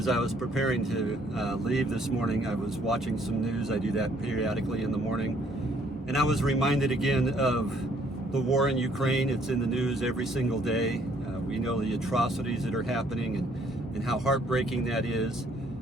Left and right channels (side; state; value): both; normal; correlation 0.64